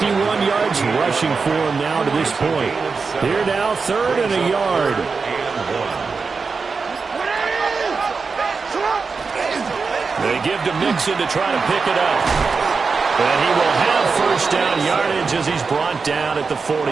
yards rushing for him now to this point. Here now, third and a yard. They give to Mixon to try to pick it up. And he will have first down yardage as he's brought down at the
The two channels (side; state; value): left; quieter; 4.8 dB